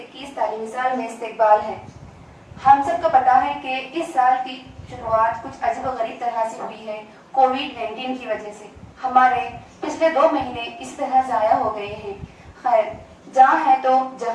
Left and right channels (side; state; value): both; identical; correlation 1.00